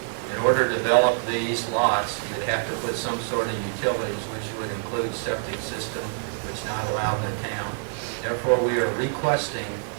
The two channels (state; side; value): silent; left; 61 dB below the other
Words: In order to develop these lots, you'd have to put some sort of utilities, which would include septic system, which is not allowed in the town. Therefore, we are requesting